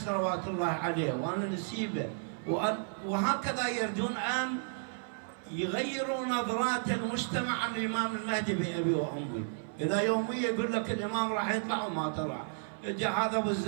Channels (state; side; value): silent; left; 56 dB below the other